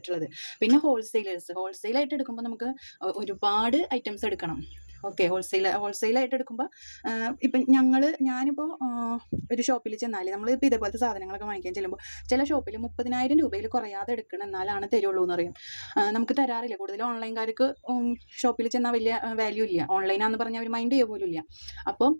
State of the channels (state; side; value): inverted; both; correlation -1.00